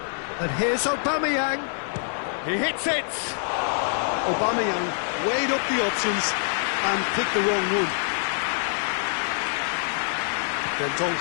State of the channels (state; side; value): silent; right; digital silence